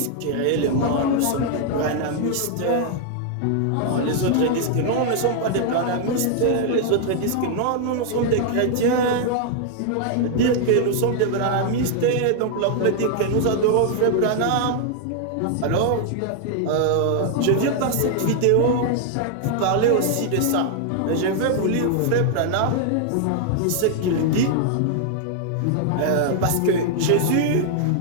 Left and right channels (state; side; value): different; both; correlation 0.00